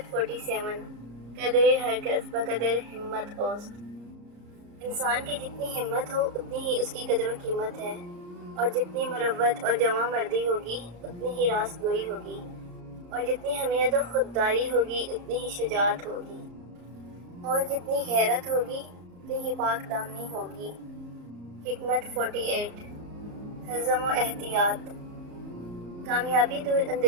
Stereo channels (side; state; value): left; late; 34 ms